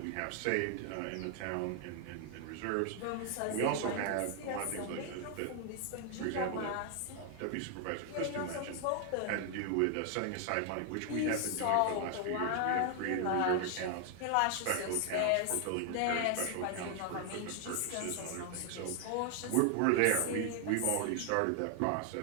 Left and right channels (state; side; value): different; both; correlation 0.00